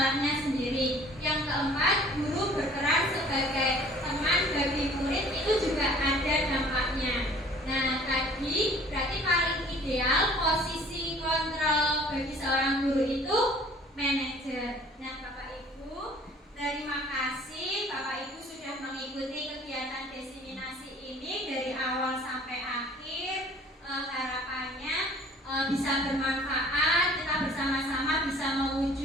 sendiri. Yang keempat, guru berperan sebagai teman bagi murid, itu juga ada dampaknya. Nah, tadi berarti paling ideal posisi kontrol bagi seorang guru itu manajer. Nah, Bapak Ibu, terima kasih Bapak Ibu sudah mengikuti kegiatan diseminasi ini dari awal sampai akhir. Harapannya bisa bermanfaat, kita bersama-sama bisa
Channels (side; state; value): both; normal; correlation 0.51